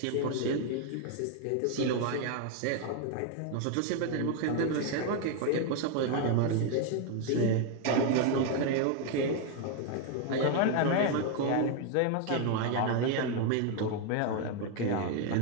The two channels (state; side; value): different; both; correlation 0.01